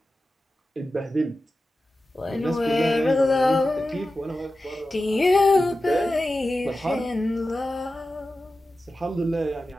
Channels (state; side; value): normal; both; correlation 0.93